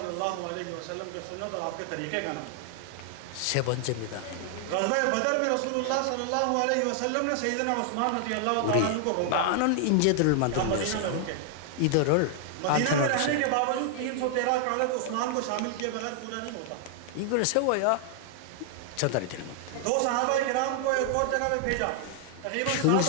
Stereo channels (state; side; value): different; both; correlation 0.00